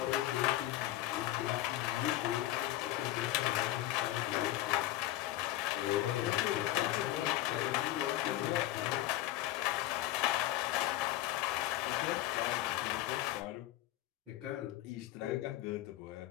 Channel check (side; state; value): right; quieter; 15.2 dB